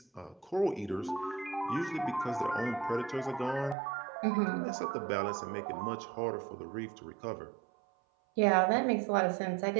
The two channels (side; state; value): left; drops out; at 3.8 s